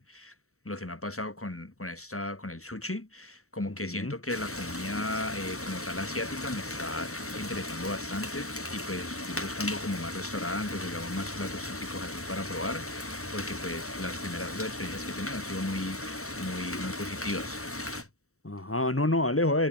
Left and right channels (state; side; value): late; right; 0.64 ms